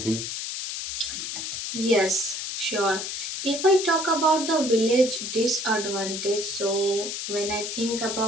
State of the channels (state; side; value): noise; left; hiss, 5 dB below the sound